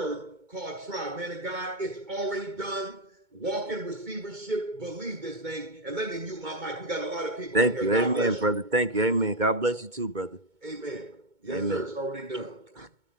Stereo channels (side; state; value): left; late; 2.2 ms